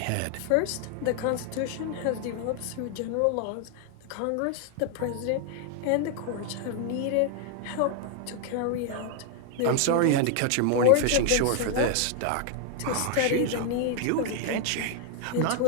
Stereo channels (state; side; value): different; both; correlation 0.00